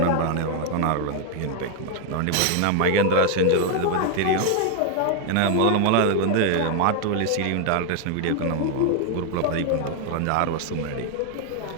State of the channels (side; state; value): both; different; correlation 0.00